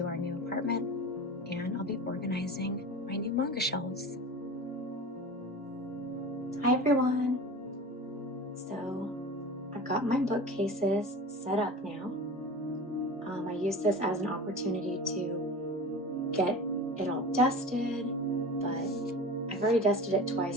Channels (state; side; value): normal; both; correlation 0.34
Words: our new apartment and I'll be organizing my new manga shelves. Hi everyone. So I've got my bookcases set up now. I use this as an opportunity to get it all dusted, but I've already dusted it